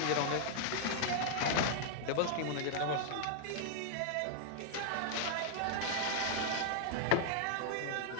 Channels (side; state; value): both; different; correlation -0.01